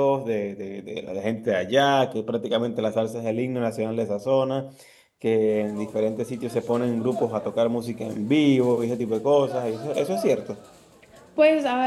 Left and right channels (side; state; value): both; identical; correlation 1.00